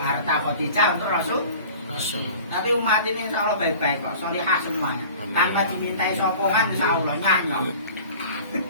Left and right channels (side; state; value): both; inverted; correlation -0.43